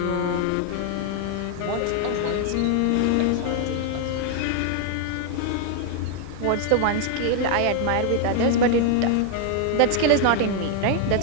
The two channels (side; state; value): both; different; correlation 0.00